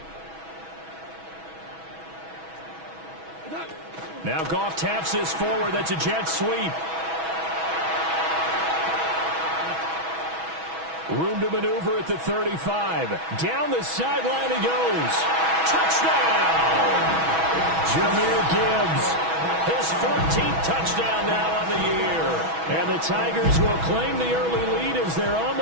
Now Goff taps this forward. That's a jet sweep. Room to maneuver at the 35. Down the sideline he goes. Touchdown! Jahmyr Gibbs. His 14th touchdown now on the year. And the Tigers will claim the early lead as they're on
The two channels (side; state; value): left; late; 6.2 ms